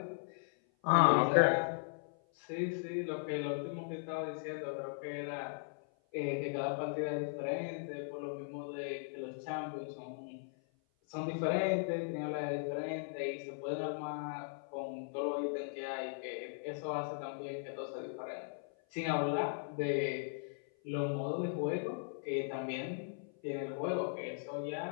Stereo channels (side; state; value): right; silent; 52 dB below the other